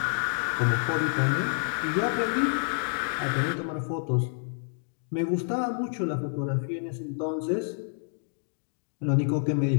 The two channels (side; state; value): right; silent; digital silence